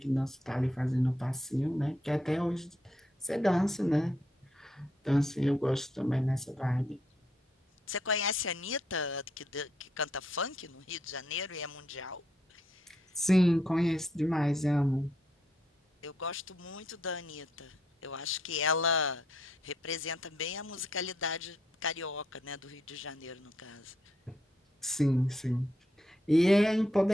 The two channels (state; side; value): normal; both; correlation 0.75